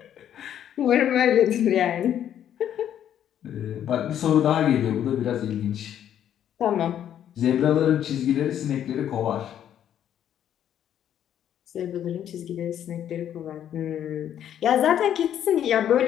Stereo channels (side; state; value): right; quieter; 10.2 dB